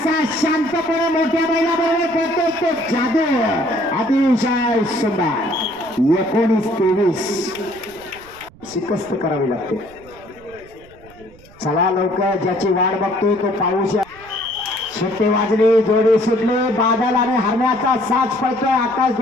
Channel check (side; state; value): right; noise; rumble, 24 dB below the sound